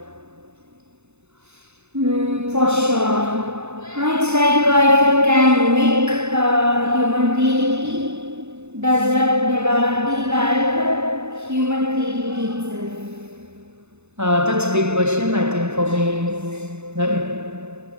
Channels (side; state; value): left; late; 0.81 ms